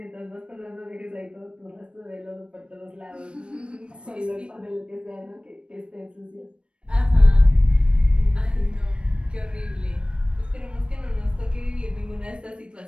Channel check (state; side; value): late; left; 0.057 ms